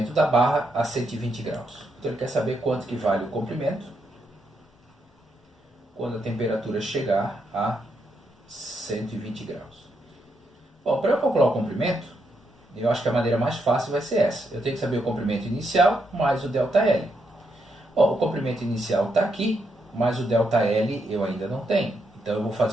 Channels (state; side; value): normal; both; correlation 0.80